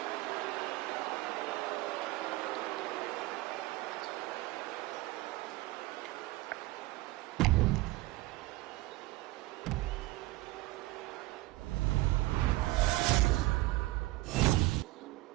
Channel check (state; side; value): quieter; left; 19.4 dB